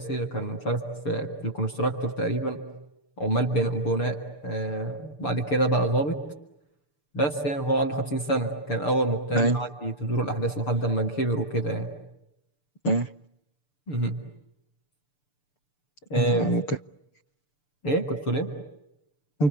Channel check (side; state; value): right; late; 6.8 ms